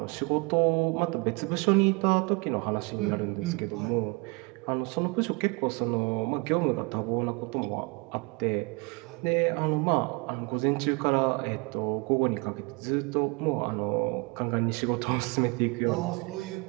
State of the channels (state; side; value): quieter; left; 29.5 dB